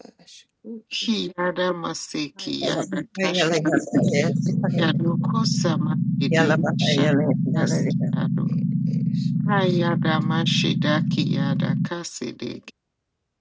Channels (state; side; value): identical; both; correlation 1.00